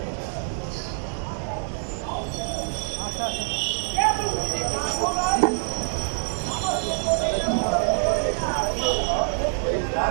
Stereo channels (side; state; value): left; silent; 61 dB below the other